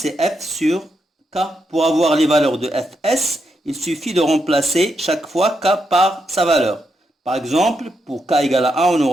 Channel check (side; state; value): both; normal; correlation 0.82